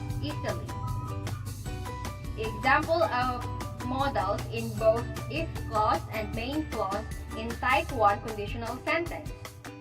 easily. Example of modals in both if clause and main clause in type 1 conditional sentence.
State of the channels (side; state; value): both; identical; correlation 1.00